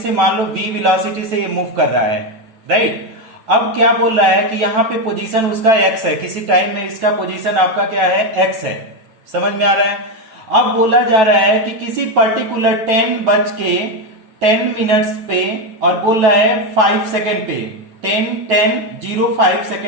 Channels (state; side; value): late; left; 9.1 ms